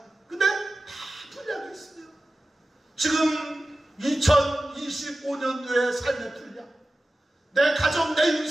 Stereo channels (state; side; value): normal; both; correlation 0.94